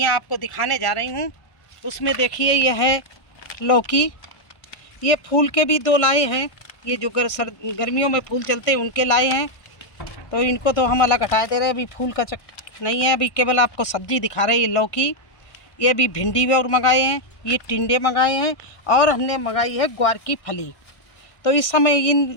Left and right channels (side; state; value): right; late; 1.6 ms